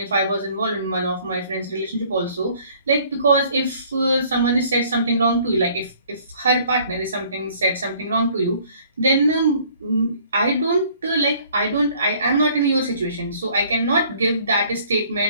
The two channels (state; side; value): inverted; both; correlation -0.57